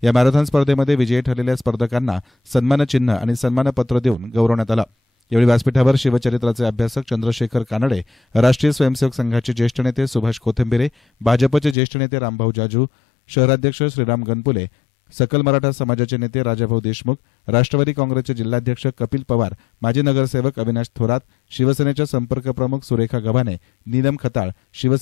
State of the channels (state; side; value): drops out; right; at 11.8 s